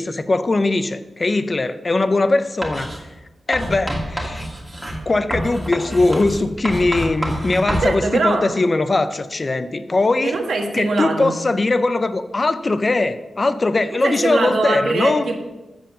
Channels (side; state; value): both; normal; correlation 0.94